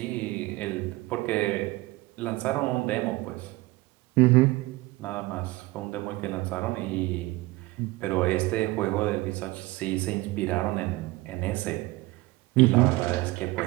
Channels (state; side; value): quieter; left; 20.4 dB